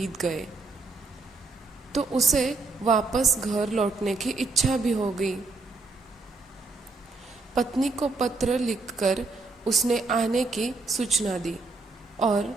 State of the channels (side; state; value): left; quieter; 3.7 dB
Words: गए तो उसे वापस घर लौटने की इच्छा भी हो गई। पत्नी को पत्र लिखकर उसने आने की सूचना दी और